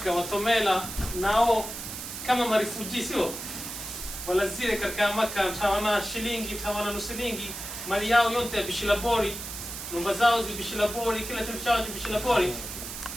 watomela nao kama marifuji sio wala zile katika Makka tawana shilingi tawana nusilingi mali yao yote bishilabori nyumba zao zibishilabori kila kitu chao bishilabori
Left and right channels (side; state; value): right; noise; hiss, 8 dB below the sound